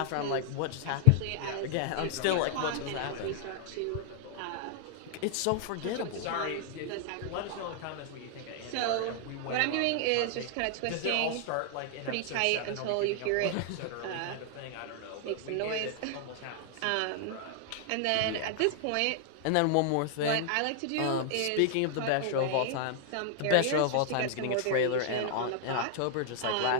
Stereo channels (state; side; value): different; both; correlation 0.00